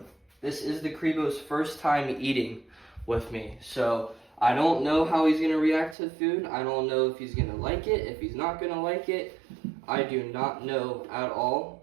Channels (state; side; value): drops out; left; at 6.0 s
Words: This is the Creo's first time eating with me. So, I don't know how he's going to react to the food. I don't know if he's going to like it, if he's not going to like it. I do not know at all.